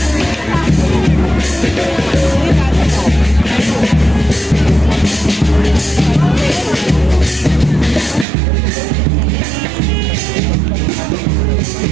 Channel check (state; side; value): drops out; left; at 8.2 s